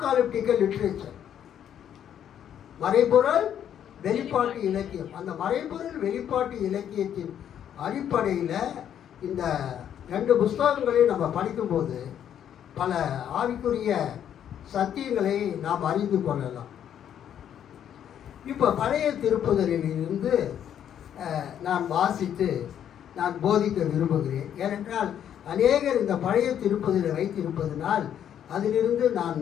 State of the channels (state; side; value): quieter; right; 9.7 dB